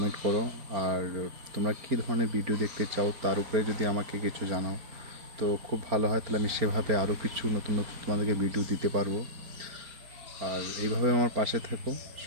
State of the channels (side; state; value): left; late; 4.4 ms